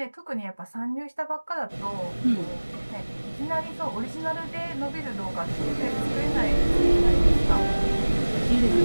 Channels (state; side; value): inverted; both; correlation -1.00